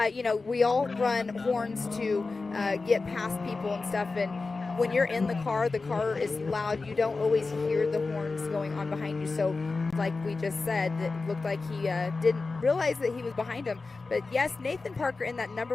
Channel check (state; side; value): quieter; right; 3.9 dB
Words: we all run horns to get past people and stuff, and when you're in the car is loud. You don't always hear the horns going on behind you. So like we just said, it looked like he didn't realize that he was behind him. But yes, Nathan Parker in that number